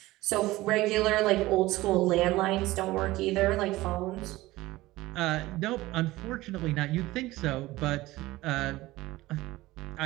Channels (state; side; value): quieter; left; 18.4 dB